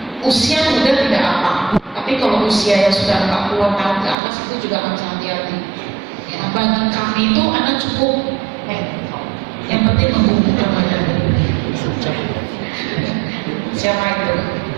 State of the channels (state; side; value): drops out; left; at 4.2 s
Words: usia muda tidak apa, tapi kalau usia yang sudah 40 tahun ke atas itu juga harus hati-hati. Ya, bagi kami itu anak cukup, yang penting membukukan badan. Siapa itu?